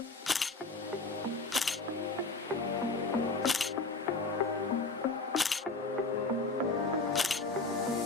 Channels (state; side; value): quieter; right; 3.6 dB